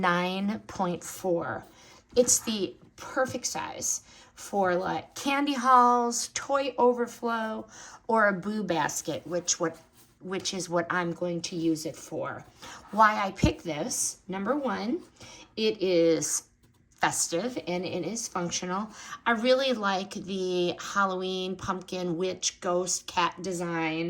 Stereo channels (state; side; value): identical; both; correlation 1.00